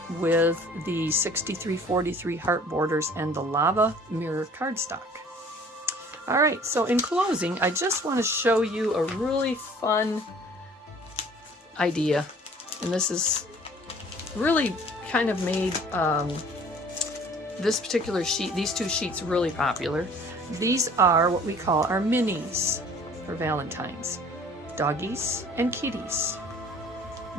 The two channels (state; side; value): normal; both; correlation 0.52